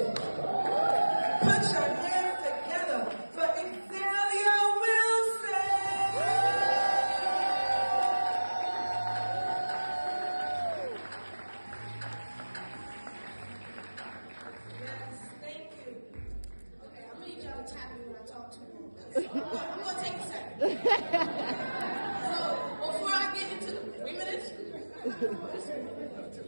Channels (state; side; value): inverted; both; correlation -1.00